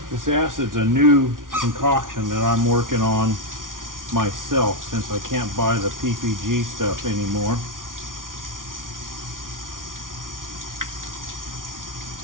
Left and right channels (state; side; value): late; left; 0.89 ms